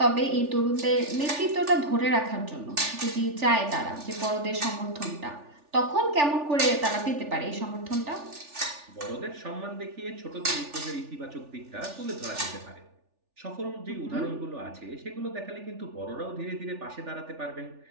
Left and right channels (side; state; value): left; late; 3.4 ms